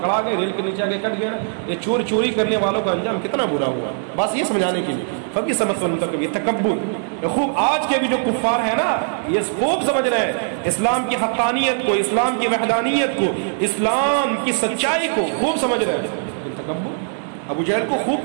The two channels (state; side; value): silent; left; digital silence